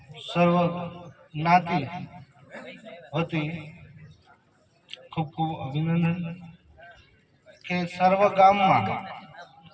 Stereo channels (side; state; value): both; identical; correlation 1.00